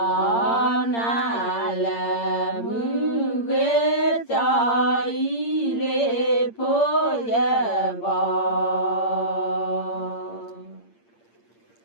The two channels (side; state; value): right; late; 8.7 ms